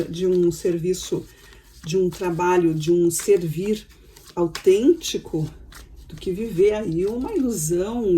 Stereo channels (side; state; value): both; identical; correlation 1.00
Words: um serviço, de um trabalho, de um servir autêntico, do que viver aí uma